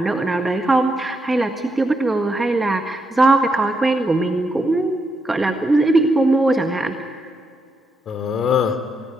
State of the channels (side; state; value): both; normal; correlation 0.81